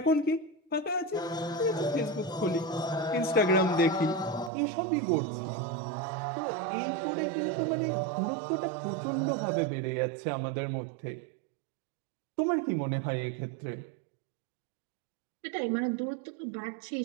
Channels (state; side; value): drops out; left; at 4.5 s